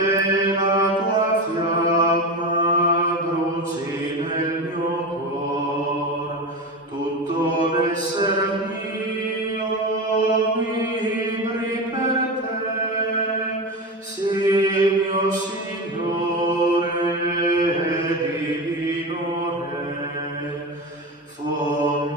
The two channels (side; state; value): both; normal; correlation 0.22